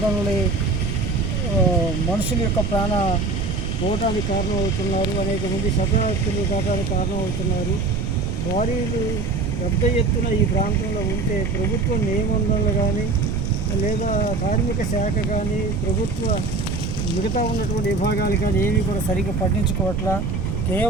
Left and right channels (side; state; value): right; noise; rumble, 2 dB below the sound